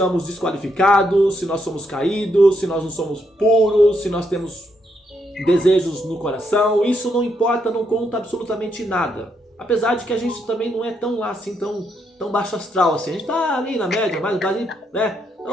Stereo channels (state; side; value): normal; both; correlation 0.77